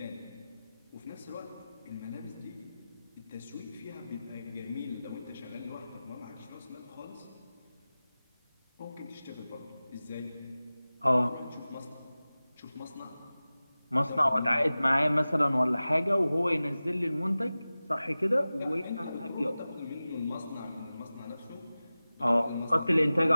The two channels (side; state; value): both; inverted; correlation -0.97